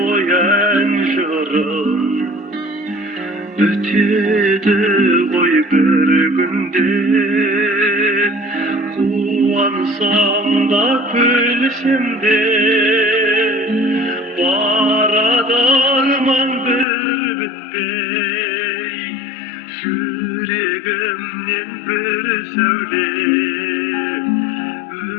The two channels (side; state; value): right; drops out; at 16.9 s